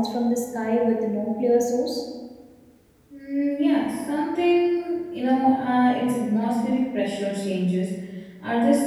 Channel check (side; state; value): both; identical; correlation 1.00